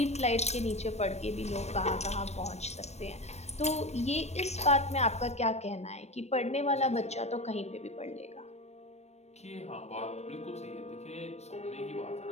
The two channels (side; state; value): right; late; 0.32 ms